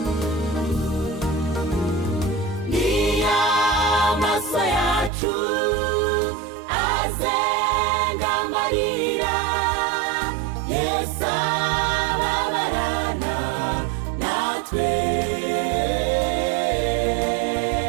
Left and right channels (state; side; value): drops out; left; at 5.1 s